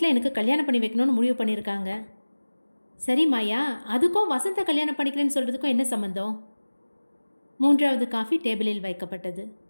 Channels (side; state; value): both; inverted; correlation -1.00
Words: எனக்கு கல்யாணம் பண்ணி வைக்கணும்னு முடிவு பண்ணியிருக்காங்க. சரி மாயா, அதுக்கும் வசந்தை கல்யாணம் பண்ணிக்கிறேன்னு சொல்கிறதுக்கும் என்ன சம்மந்தம்? 3வது காஃபி டேபிளில் வைக்கப்பட்டது.